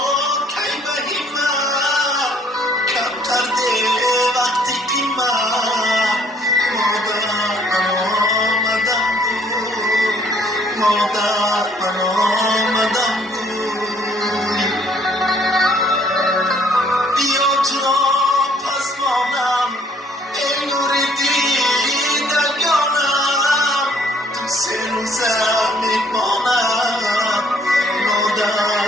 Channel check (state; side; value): normal; both; correlation 0.62